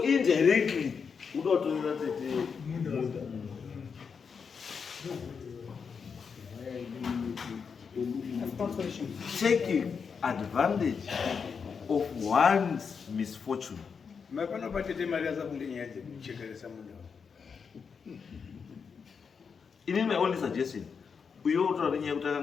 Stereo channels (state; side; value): quieter; right; 6.0 dB